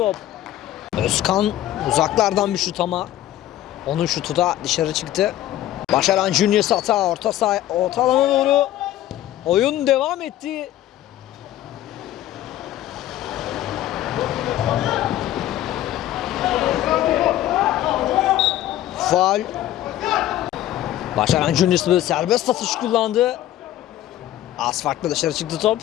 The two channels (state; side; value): quieter; right; 13.4 dB